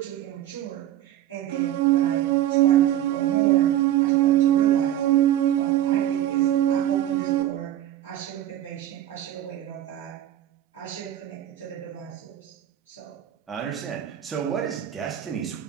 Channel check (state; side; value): quieter; left; 12.4 dB